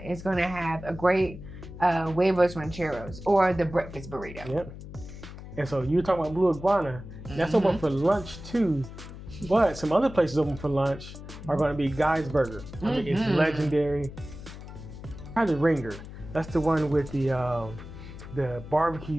going to have a great huevos rancheros or the breakfast burrito. And so you're talking about Blue Iguana. That's open for lunch too. But some other places open for lunch are going to be Guy's Burger. I mean, it's legendary. Probably Ringer. That's the one with the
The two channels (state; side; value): noise; left; hum, 13 dB below the sound